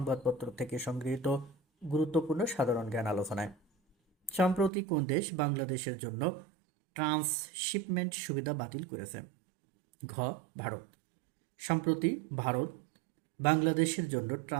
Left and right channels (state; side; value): drops out; left; at 4.7 s